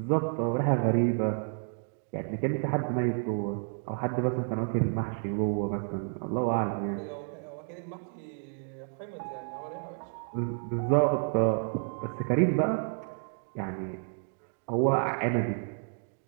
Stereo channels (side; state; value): left; silent; 57 dB below the other